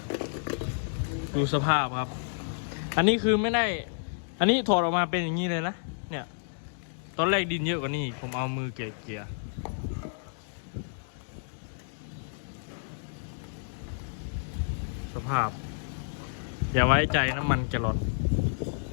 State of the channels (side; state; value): right; silent; digital silence